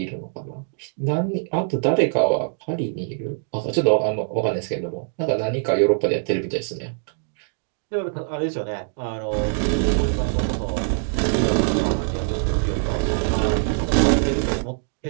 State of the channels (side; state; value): left; silent; digital silence